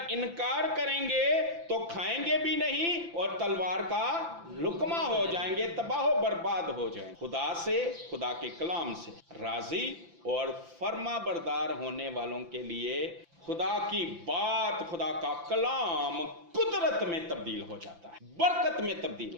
इनकार करेंगे तो खाएंगे भी नहीं और तलवार का लुकमा हो जाएंगे तबाह बर्बाद हो जाएंगे खुदा से खुदा के कलाम से राजी और फर्मा बरदार होने वालों के लिए खुदा की बात खुदा का कलाम कुदरत में तब्दील हो जाता है बरकत में तब्दील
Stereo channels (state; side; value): late; left; 5.9 ms